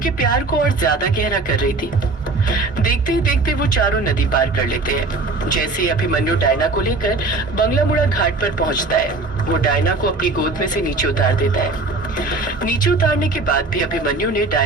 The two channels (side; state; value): left; quieter; 3.4 dB